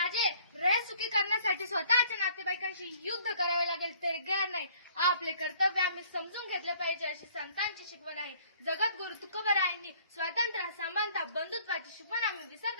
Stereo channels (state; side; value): inverted; both; correlation -0.57